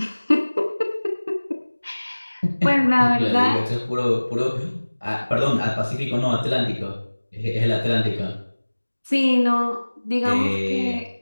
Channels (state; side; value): inverted; both; correlation -1.00